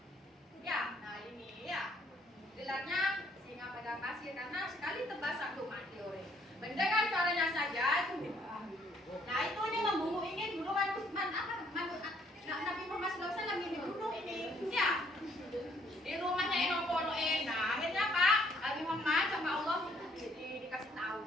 saja itu bid'ah. Nah itu ini membunuh ingin bunuhan Utsman Nabi Muhammad SAW ingin dibunuh ini. Ya. Di rumahnya Enopono Nah akhirnya Pak Nabi Muhammad sama Allah dikasih tahu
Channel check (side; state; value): both; normal; correlation 0.66